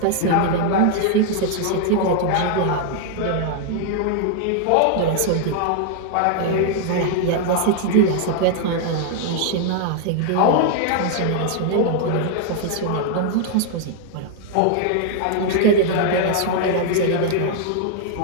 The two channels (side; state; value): both; different; correlation 0.00